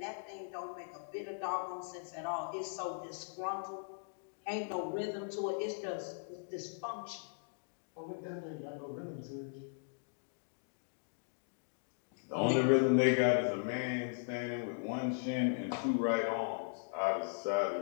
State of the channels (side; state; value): right; silent; digital silence